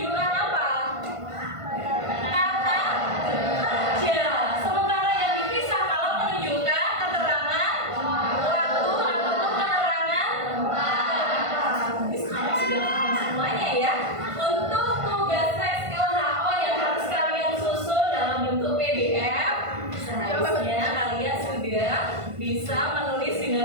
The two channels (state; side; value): late; left; 1.5 ms